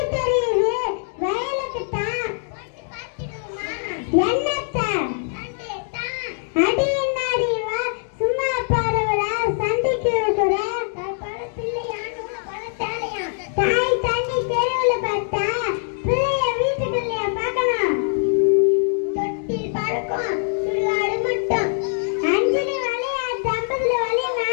தெரியுது? வயலுக்கு தான். என்னத்த அடி என்னாடி வா சும்மா பாருவல சண்டைக்கு இருக்கிற தாய் தண்ணி தெருவுல பார்த்தா பிள்ளைய வீட்டுக்குள்ளே பார்க்கணும். தொட்டில் பறக்கும் சுடுகாடு மட்டும் அஞ்சலி வழியா தம்பதுல வழினா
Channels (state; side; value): silent; right; digital silence